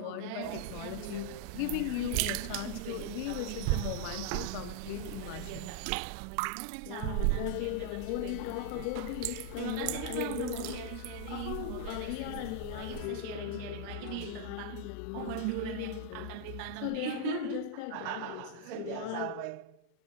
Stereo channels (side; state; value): both; different; correlation -0.01